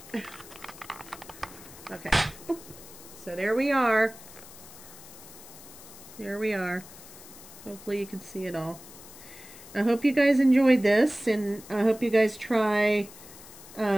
Okay, so there we are. There we are. Hopefully you can see it all. I hope you guys enjoyed this, and I hope you guys try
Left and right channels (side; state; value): left; noise; hiss, 18 dB below the sound